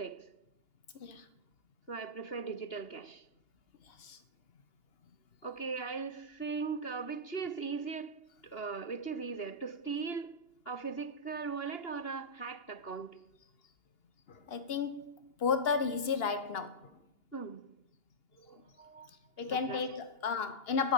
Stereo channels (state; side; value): late; right; 2.8 ms